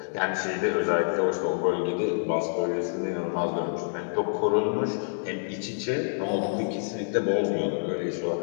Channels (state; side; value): silent; right; digital silence